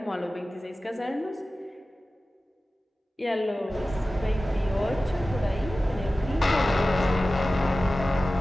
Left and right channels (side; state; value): both; normal; correlation 0.96